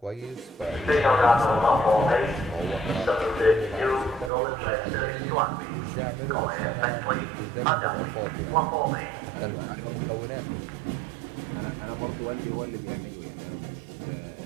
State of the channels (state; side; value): drops out; left; at 4.3 s